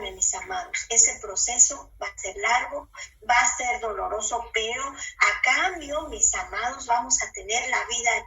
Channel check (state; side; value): identical; both; correlation 1.00